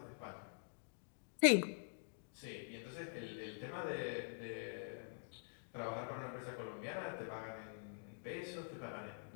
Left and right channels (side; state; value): right; silent; digital silence